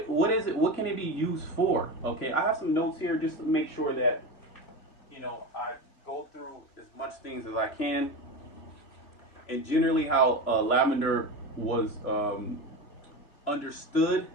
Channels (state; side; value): late; right; 3.6 ms